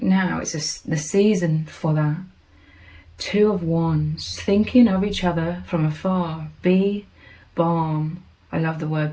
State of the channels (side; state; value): both; identical; correlation 1.00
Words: now. It's the season for that. Two of Wands, thinking of each other from afar. Be balm. I love the